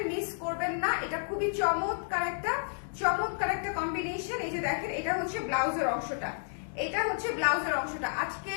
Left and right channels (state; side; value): silent; right; digital silence